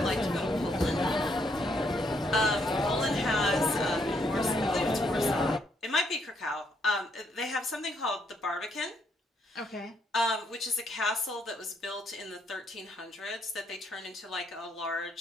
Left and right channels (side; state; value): both; normal; correlation 0.73